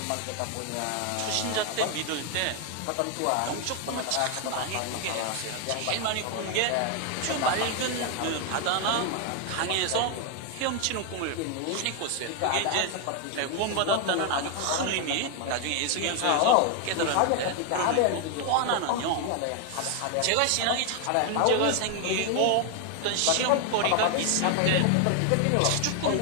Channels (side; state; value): both; different; correlation 0.01